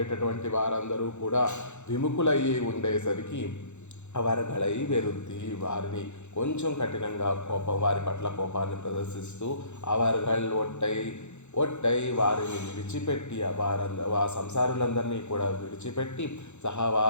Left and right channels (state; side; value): late; right; 0.83 ms